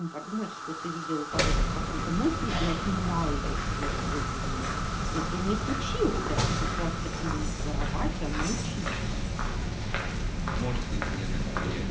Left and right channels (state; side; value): identical; both; correlation 1.00